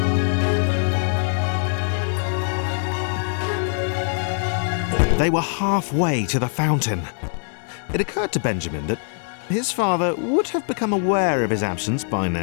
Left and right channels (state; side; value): silent; right; 64 dB below the other